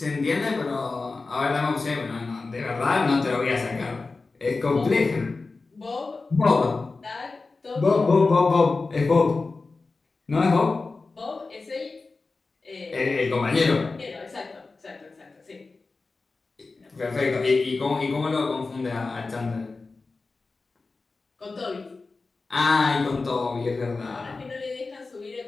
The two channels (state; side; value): quieter; right; 3.8 dB